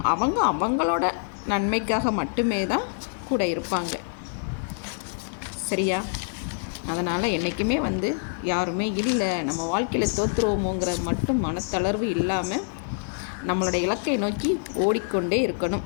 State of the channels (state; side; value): silent; right; digital silence